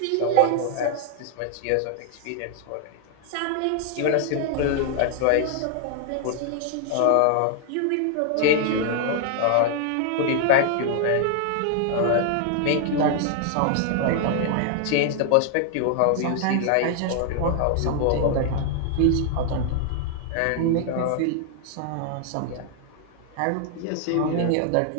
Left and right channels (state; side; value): different; both; correlation 0.00